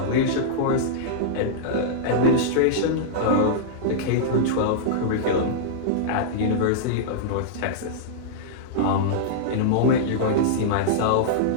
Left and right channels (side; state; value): both; different; correlation -0.02